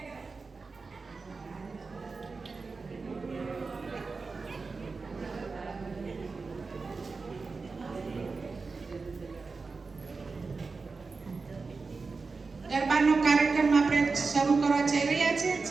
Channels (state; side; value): quieter; left; 4.3 dB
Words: ગરબાનો કાર્યક્રમ આપણે શરૂ કરવા જઈ રહ્યા છે.